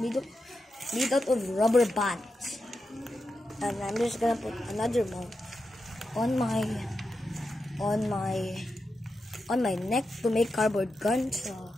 out of rubber bands, and I'm just gonna put another mount on my neck to make cardboard guns.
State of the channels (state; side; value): normal; both; correlation 0.88